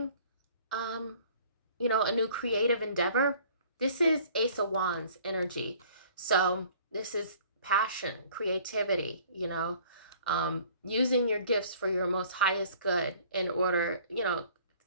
you know, a new creative endeavor. This is Ace of Wands energy. So this is passion, creativity, you know, using your gifts for your most highest good in order, you know,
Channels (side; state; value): both; inverted; correlation -0.53